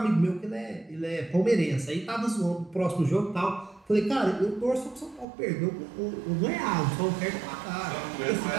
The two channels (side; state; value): left; drops out; at 5.2 s